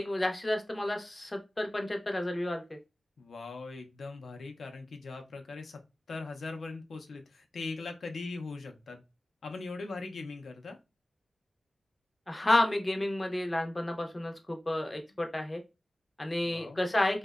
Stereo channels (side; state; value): both; normal; correlation 0.97